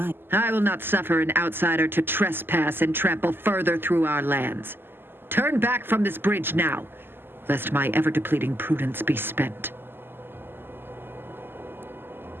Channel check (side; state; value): left; late; 0.10 ms